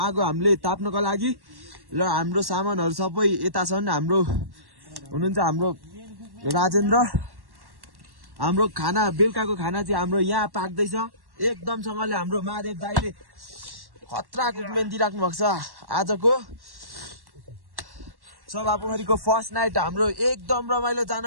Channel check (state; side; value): late; left; 1.1 ms